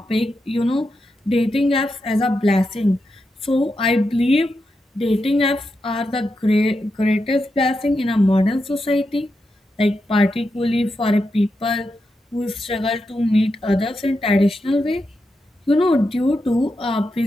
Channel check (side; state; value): both; normal; correlation 0.86